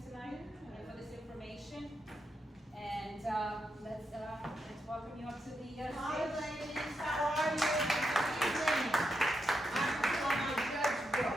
tonight and for this information. And let's welcome you up to the stage. Hi ladies, how are you? Good evening. I'm my judge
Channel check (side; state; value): both; normal; correlation 0.84